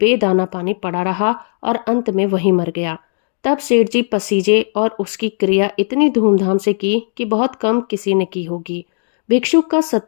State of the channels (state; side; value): silent; right; 63 dB below the other